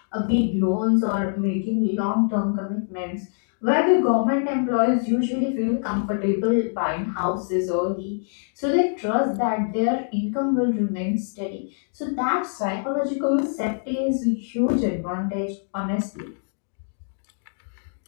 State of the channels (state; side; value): silent; right; digital silence